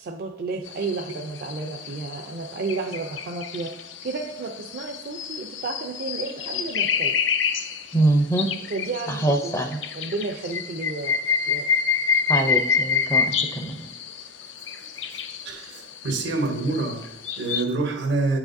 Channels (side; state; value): both; normal; correlation 0.20